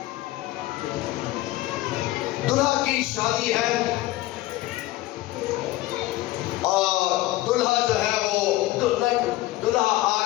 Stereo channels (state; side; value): quieter; right; 17.3 dB